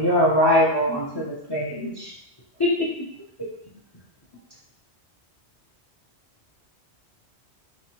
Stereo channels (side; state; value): both; normal; correlation 0.08